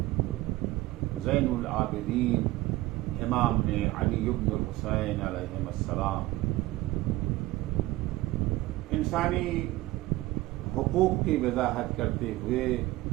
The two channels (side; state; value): left; quieter; 18.4 dB